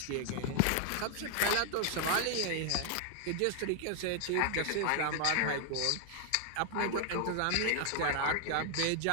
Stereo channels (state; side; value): different; both; correlation 0.00